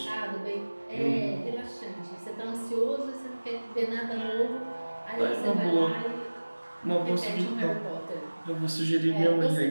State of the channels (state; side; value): inverted; both; correlation -1.00